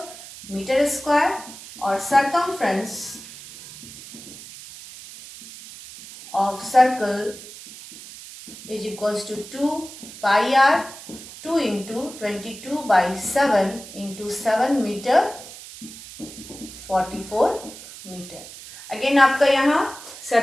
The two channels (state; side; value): noise; right; hiss, 15 dB below the sound